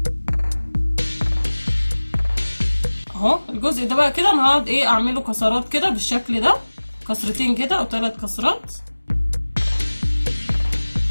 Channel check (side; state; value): both; inverted; correlation -1.00